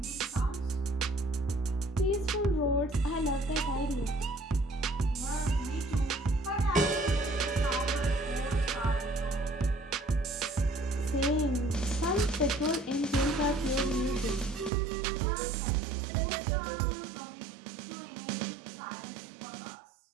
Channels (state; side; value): drops out; left; at 14.7 s